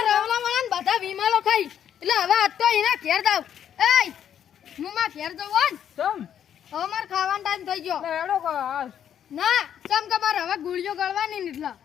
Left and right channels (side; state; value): right; quieter; 9.4 dB